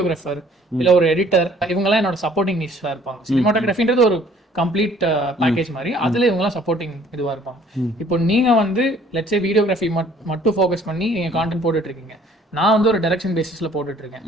இல்லை ஒரு எடிட்டர் இவங்கெல்லாம் என்னோட சப்போர்ட்டிங் நீஷஸாக இருப்பாங்க. சினிமாட்டோகிராஃபின்றது ஒரு கம்ப்ளீட் பேக்கேஜ் மாதிரி, அதுல இவங்கலாம் சப்போர்ட்டிங் இதுவா இருப்பாங்க. இப்போ நீங்க வந்து லெட்ஸ் சே வீடியோகிராஃபி மட்டும் ஃபோக்கஸ் பண்ணி நீங்க கான்டென்ட் போட்டுட்டு இருக்கீங்க, நான் வந்து ஒரு டைரக்ஷன் பேசிஸ்ல போட்டுட்டு இருக்கேன்.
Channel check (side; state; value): both; normal; correlation 0.57